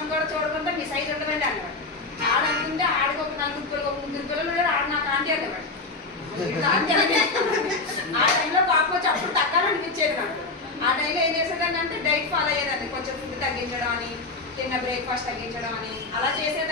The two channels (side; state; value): right; quieter; 3.5 dB